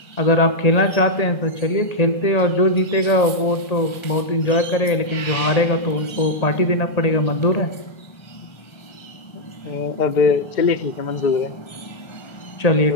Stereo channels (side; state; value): right; late; 1.3 ms